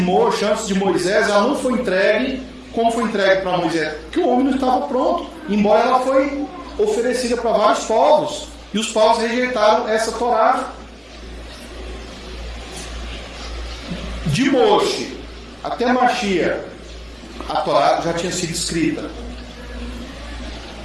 ela não foi entregue como foi entregue para Moisés? Porque o homem não estava pronto, embora ela foi oferecida para vários povos. E os povos rejeitaram essa Torá. De Moshe até Mashiach, a Torá já tinha sido escrita.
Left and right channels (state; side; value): identical; both; correlation 1.00